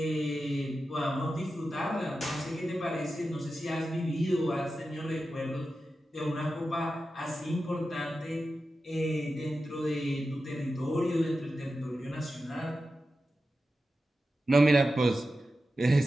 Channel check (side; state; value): both; normal; correlation 0.92